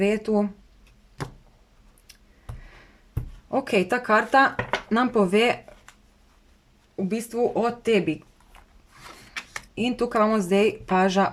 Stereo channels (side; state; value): both; identical; correlation 1.00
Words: Ok, ta karta nam pove v bistvu o tebi. In tukaj imamo zdaj paža